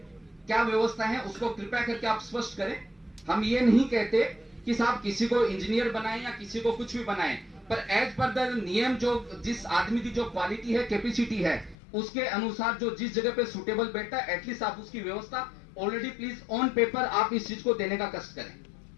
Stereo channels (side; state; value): right; drops out; at 11.8 s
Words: क्या व्यवस्था है उसको कृपया करके आप स्पष्ट करें। हम ये नहीं कहते कि साहब किसी को इंजीनियर बनाएं या किसी को कुछ भी बनाएं, पर एज पर द नियम जो जिस आदमी की जो क्वालिटी है, कैपेसिटी है, उसके अनुसार जो जिस जगह पे सुटेबल बैठता है, एटलीस्ट आप उसकी व्यवस्था ऑलरेडी प्लीज ऑन पेपर आप इस चीज को देने का कष्ट करें।